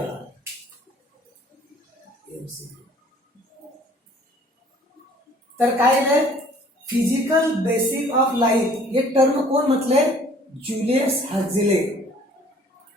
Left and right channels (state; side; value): normal; both; correlation 0.55